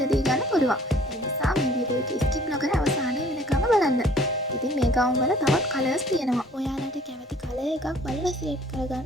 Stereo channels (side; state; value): both; normal; correlation 0.53